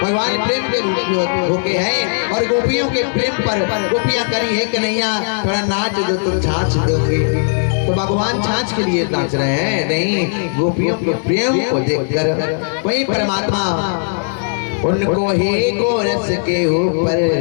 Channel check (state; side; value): silent; right; digital silence